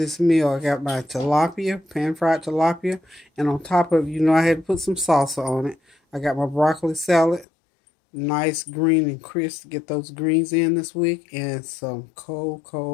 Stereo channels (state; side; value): drops out; right; at 7.5 s